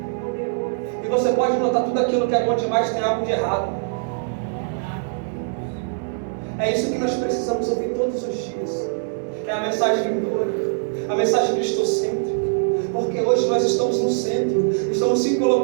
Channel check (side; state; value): left; silent; digital silence